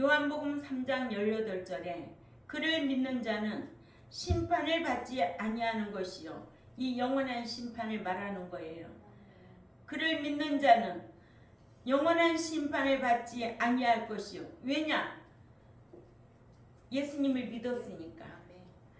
3장 18절에 그를 믿는 자는 심판을 받지 아니하는 것이요 이 영원한 심판을 말하는 거예요. 그를 믿는 자는 영원한 심판을 받지 아니할 것이요. 왜냐? 예수님을 믿었으니까.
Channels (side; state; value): both; identical; correlation 1.00